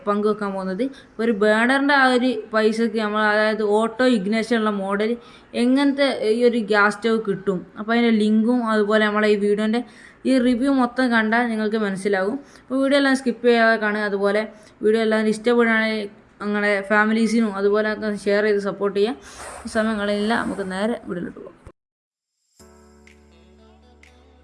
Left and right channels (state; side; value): identical; both; correlation 1.00